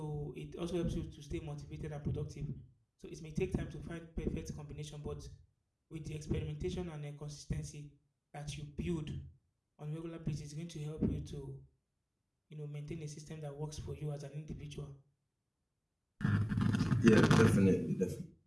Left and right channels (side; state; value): both; identical; correlation 1.00